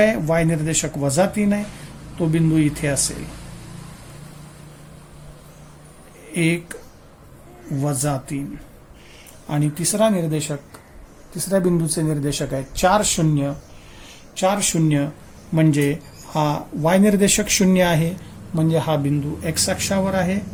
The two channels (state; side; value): identical; both; correlation 1.00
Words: y निर्देशक वजा 3 आहे. तो बिंदू इथे असेल. 1 वजा 3. आणि तिसरा बिंदूचे निर्देशक आहे 4 0. 4 0 म्हणजे हा y निर्देशक 0 आहे, म्हणजे हा बिंदू x अक्षावर आहे,